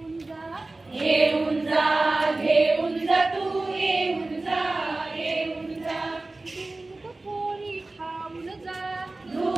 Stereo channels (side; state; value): left; quieter; 3.1 dB